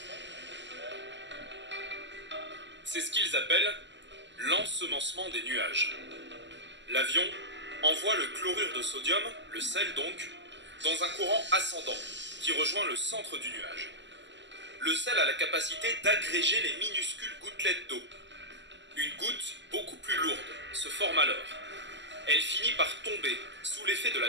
C'est ce qu'ils appellent l'ensemencement des nuages. L'avion envoie le chlorure de sodium, le sel donc, dans un courant ascendant qui rejoint le centre du nuage. Le sel a la capacité d'agréger les minuscules gouttelettes d'eau. Une goutte beaucoup plus lourde se forme alors. Elle finit par tomber sous l'effet de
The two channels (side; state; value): left; late; 0.53 ms